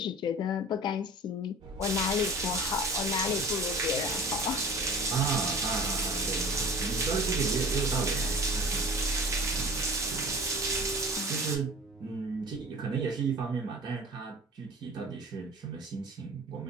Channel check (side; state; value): both; normal; correlation 0.41